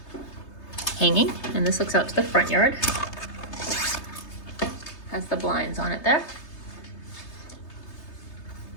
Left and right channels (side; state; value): right; late; 3.3 ms